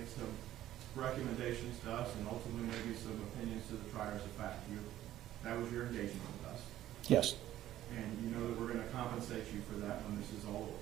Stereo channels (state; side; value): quieter; left; 13.3 dB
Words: some recommendations to us and ultimately maybe some opinions to the triers of fact. That was your engagement with us. Yes. And you know that we're going to compensate you for that when this is all